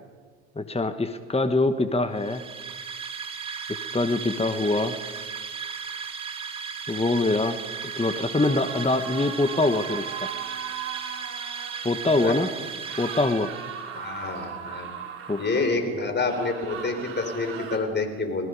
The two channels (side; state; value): both; normal; correlation 0.48